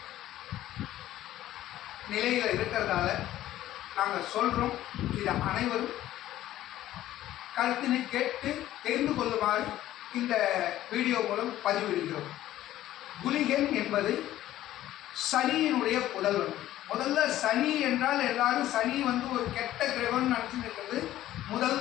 நிலையில் இருக்கிறதால நாங்கள் சொல்கிறோம். இதை அனைவரும் கருத்தினை கேட்டு தெரிந்து கொள்ளுமாறு இந்த வீடியோ மூலம் பதிவிடுகிறோம். குளிகன் என்பது சனியினுடைய புதல்வன். முதல்ல சனி என்றால் எல்லாரும் சனி ஒரு கெட்ட கிரகம்னு நினச்சிட்டு இருக்கிறது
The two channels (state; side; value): quieter; right; 13.7 dB